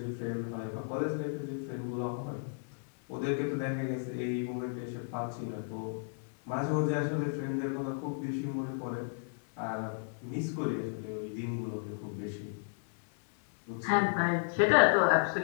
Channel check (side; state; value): right; silent; digital silence